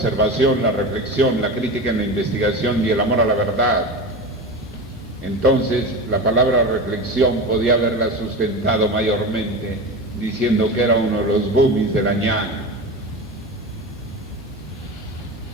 la reflexión, la crítica en la investigación y el amor a la verdad, entonces la palabra reflexión podía haberla sustentado mayormente diciendo que era uno de los boomies de la ñana.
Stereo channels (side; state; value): both; normal; correlation 0.26